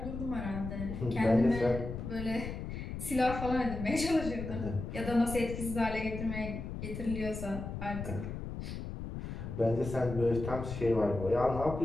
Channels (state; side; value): noise; left; rumble, 6 dB below the sound